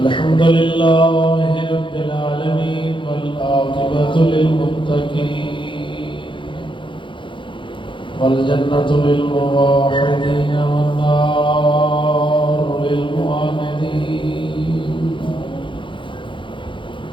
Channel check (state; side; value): late; right; 0.24 ms